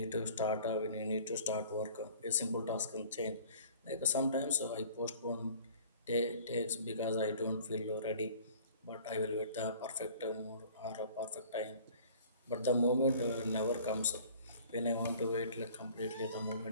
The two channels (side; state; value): both; inverted; correlation -0.49